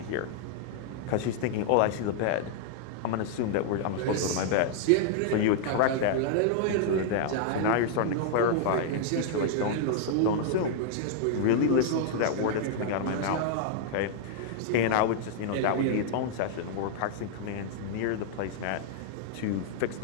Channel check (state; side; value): different; both; correlation -0.01